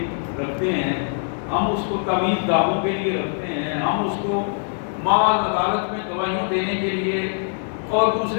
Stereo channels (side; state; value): right; silent; 64 dB below the other